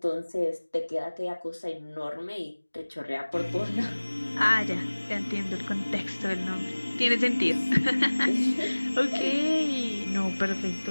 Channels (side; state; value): both; inverted; correlation -1.00